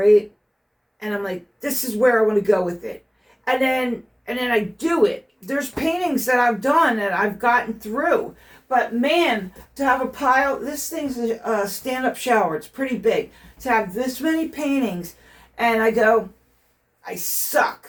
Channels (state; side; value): identical; both; correlation 1.00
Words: and I'm like, this is where I want to go with it, and then I do it. There's paintings that I've done and I've gotten through, but man, to have a pile, this thing's a stand-up shower. It's pretty big. To have this many paintings, and I go, I